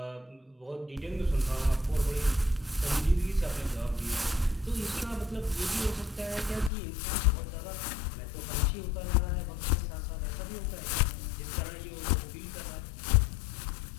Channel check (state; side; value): drops out; right; at 6.7 s